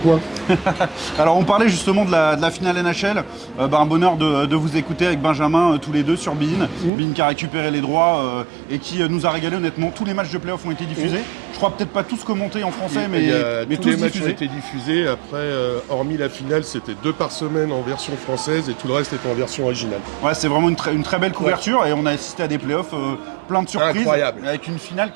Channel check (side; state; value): left; drops out; at 6.9 s